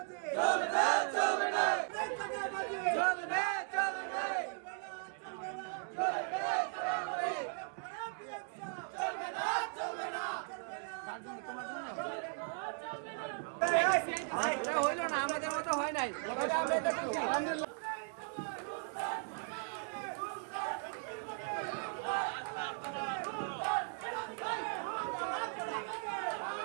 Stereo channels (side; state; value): left; silent; 53 dB below the other